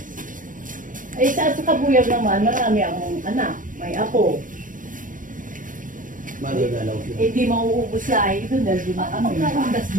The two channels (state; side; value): late; left; 0.39 ms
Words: Ay, sa kabuyag naman, marami akong anak. May apo. Madadalaw siya. Eh, di mauubos sa ay doon dahil di makami.